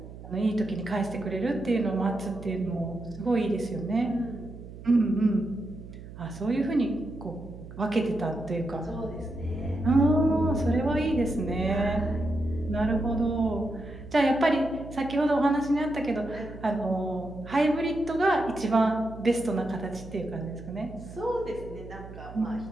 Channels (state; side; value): noise; right; hum, 14 dB below the sound